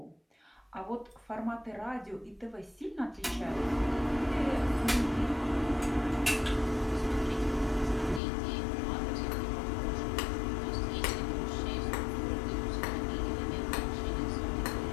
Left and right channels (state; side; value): drops out; right; at 8.2 s